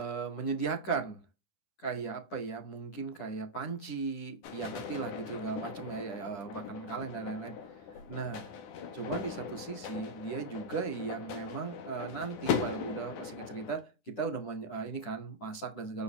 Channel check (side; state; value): right; late; 10 ms